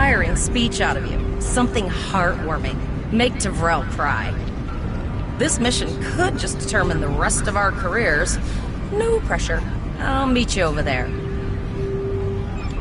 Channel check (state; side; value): identical; both; correlation 1.00